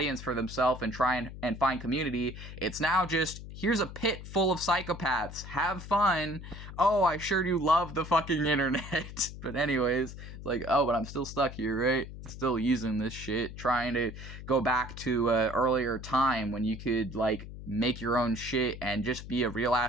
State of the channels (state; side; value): noise; left; hum, 12 dB below the sound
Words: for themselves and try and find community. It's now just, here's a pit full of psychopaths. Have fun. Oh, I sure do love the fucking internet. But anyways, it's like, oh, but I'm still stuck here, right? Still using this shit, trying to go back to an earlier time when you could, like, make your own shit and just be a real